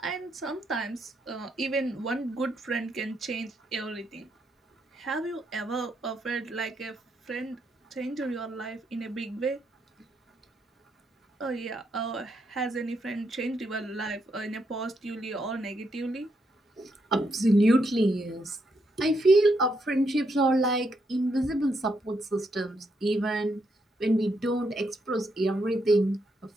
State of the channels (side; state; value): both; normal; correlation 0.78